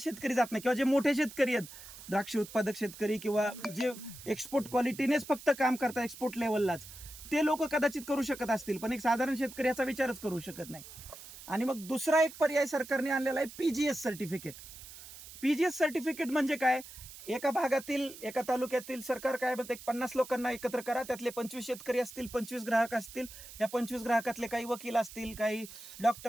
जात नाही, किंवा जे मोठे शेतकरी आहेत, द्राक्ष उत्पादक शेतकरी किंवा जे एक्सपोर्ट क्वालिटीनेच फक्त काम करतात एक्सपोर्ट लेवललाच, ते लोक कदाचित करू शकत असतील, पण एक साधारण शेतकरी याचा विचारच करू शकत नाही. आणि मग दुसरा एक पर्याय सरकारने आणलेला आहे PGS सर्टिफिकेट. PGS सर्टिफिकेट म्हणजे काय? एका भागातील, एका तालुक्यातील सरकार काय म्हणते, 50 लोकांना एकत्र करा, त्यातले 25 शेतकरी असतील, 25 ग्राहक असतील, या 25 ग्राहकातले काही वकील असतील, काही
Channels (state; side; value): noise; right; hiss, 15 dB below the sound